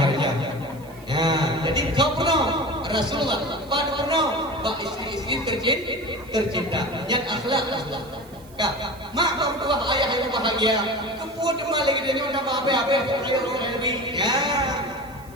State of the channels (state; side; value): noise; right; hiss, 25 dB below the sound